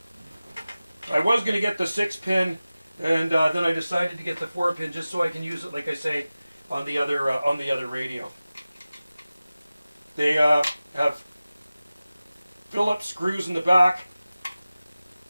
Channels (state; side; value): inverted; both; correlation -0.96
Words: I was going to get the 6-pin, and then I decided to get the 4-pin just so I can use it, like I say, on the other radio. They have Phillips screws in the back.